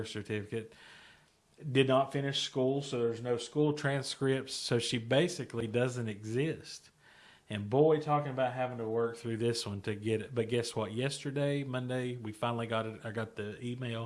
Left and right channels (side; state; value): both; identical; correlation 1.00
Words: certificate, did not finish school, so there's no school transcripts, so she basically doesn't exist. And boy, talking about having to work through this one to get it. But guess what? Yesterday, Monday, we finally got it. I got the